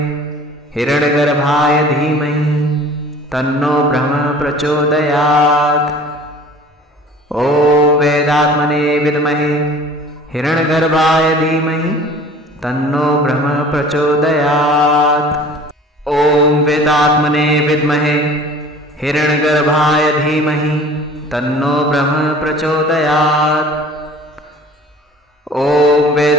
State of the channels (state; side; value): normal; both; correlation 0.46